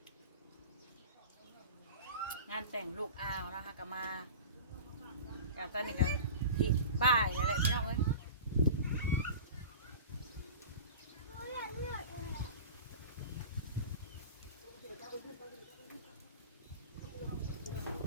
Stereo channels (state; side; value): inverted; both; correlation -0.35